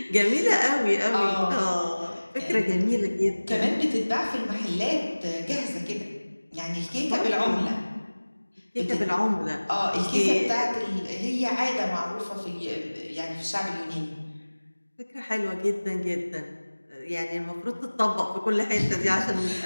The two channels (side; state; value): both; inverted; correlation -1.00